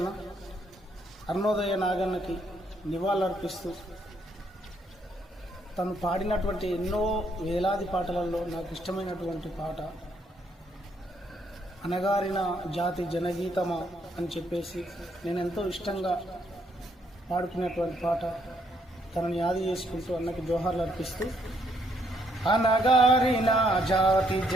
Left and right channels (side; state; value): both; normal; correlation 0.72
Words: అరుణోదయ నాగన్నకి నివాళులర్పిస్తూ తను పాడినటువంటి ఎన్నో వేలాది పాటలలో నాకు ఇష్టమైనటువంటి పాట అనగారిన జాతి జనగీతమా అని చెప్పేసి నేను ఎంతో ఇష్టంగా పాడుకునేటువంటి పాట తనని యాది చేసుకుంటూ అన్నకి జోహార్లు అర్పిస్తూ, అనగారిన జాతి